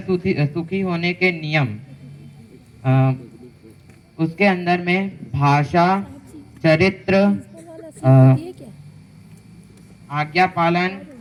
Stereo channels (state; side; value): identical; both; correlation 1.00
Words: सुखी होने के नियम, अ, उसके अंदर में भाषा, चरित्र, अ, आज्ञा पालन